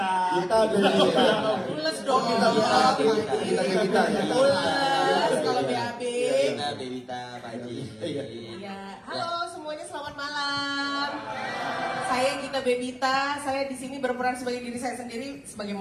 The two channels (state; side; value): identical; both; correlation 1.00